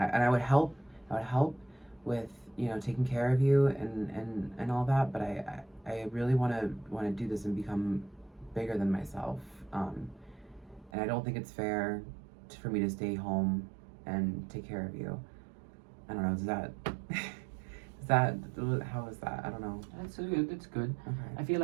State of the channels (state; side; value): drops out; left; at 10.9 s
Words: would help with taking care of you and all that, but I really want to do this and become bigger than myself, and I don't think it's fair for me to stay home and take care of you. I don't know, how is that? I don't know. It's good. It's good. Okay. I feel